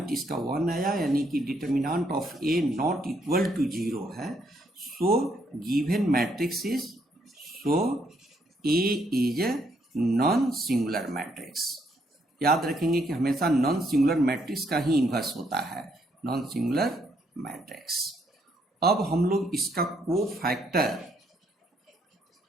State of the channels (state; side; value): normal; both; correlation 0.72